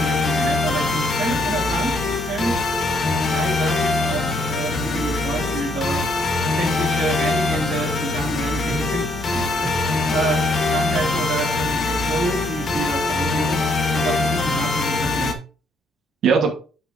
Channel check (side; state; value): both; normal; correlation 0.70